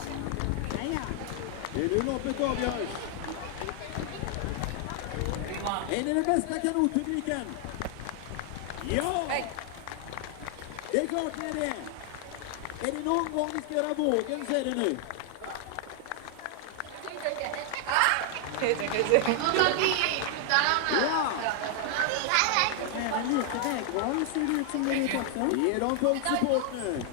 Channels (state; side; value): different; both; correlation 0.00